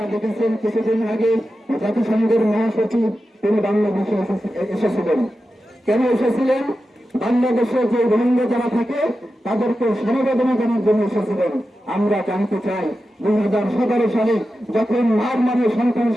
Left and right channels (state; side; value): normal; both; correlation 0.91